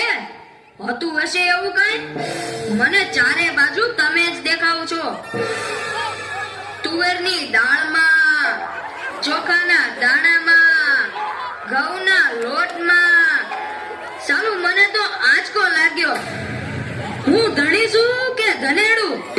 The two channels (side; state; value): both; identical; correlation 1.00